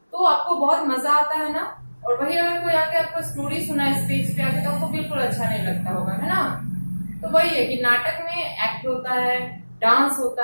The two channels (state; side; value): inverted; both; correlation -1.00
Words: तो आपको बहुत मजा आता है ना। और वही अगर कोई आके आपको स्टोरी सुना स्टेज पे आके तो आपको बिल्कुल अच्छा नहीं लगता होगा, है ना। तो वही है कि नाटक में एक्ट होता है, डांस होता